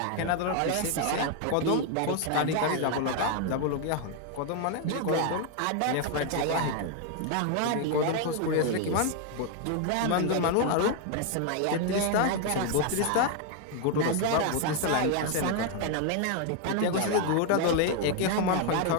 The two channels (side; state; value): both; different; correlation 0.01